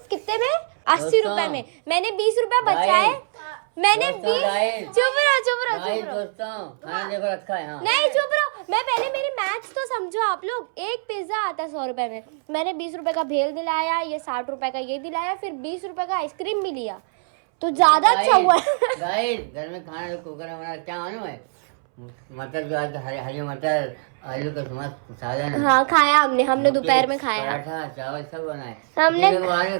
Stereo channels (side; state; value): left; silent; 63 dB below the other